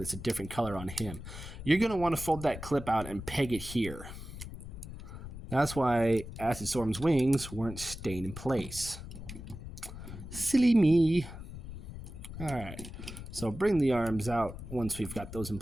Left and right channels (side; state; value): left; noise; rumble, 11 dB below the sound